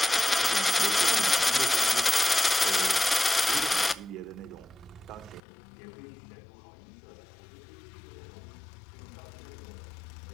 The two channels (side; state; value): right; drops out; at 5.4 s